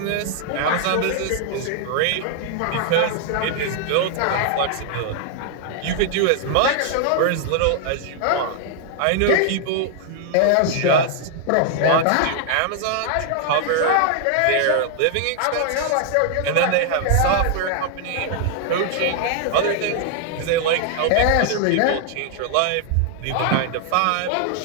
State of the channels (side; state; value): both; different; correlation 0.00